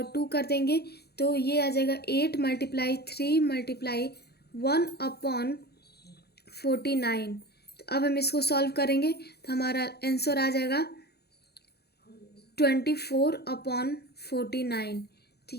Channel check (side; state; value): right; late; 0.47 ms